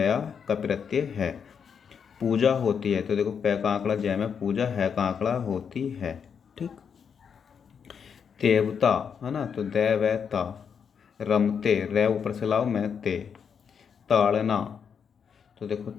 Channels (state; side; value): quieter; right; 6.9 dB